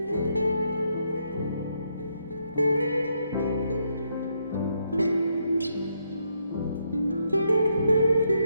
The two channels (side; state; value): both; inverted; correlation -0.77